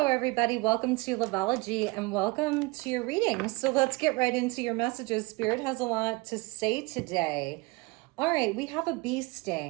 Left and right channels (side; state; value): left; quieter; 24.9 dB